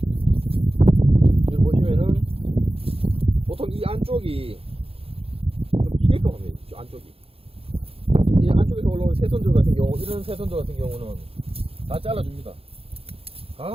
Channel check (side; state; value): left; late; 0.28 ms